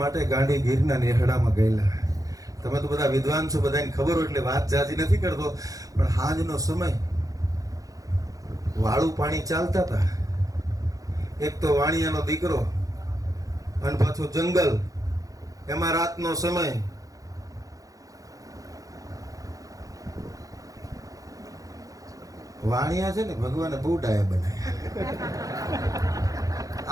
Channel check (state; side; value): late; left; 0.17 ms